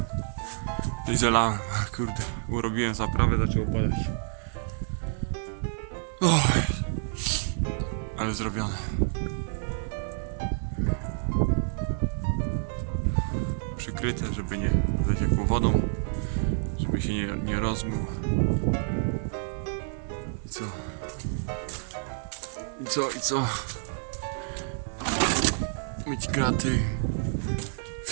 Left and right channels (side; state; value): left; silent; digital silence